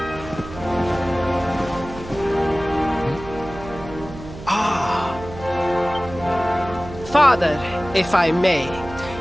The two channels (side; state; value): right; noise; hum, 13 dB below the sound